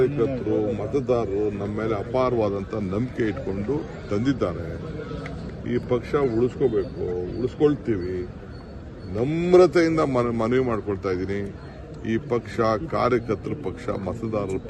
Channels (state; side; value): identical; both; correlation 1.00